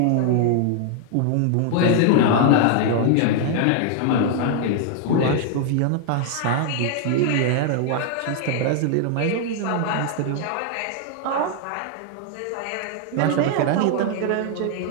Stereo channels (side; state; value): both; different; correlation 0.00